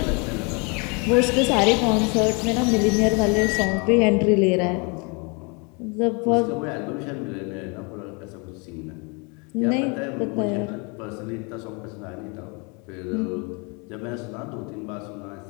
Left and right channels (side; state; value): right; quieter; 32.0 dB